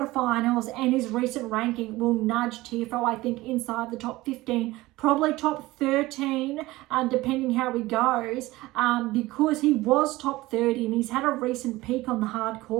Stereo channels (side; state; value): left; quieter; 19.0 dB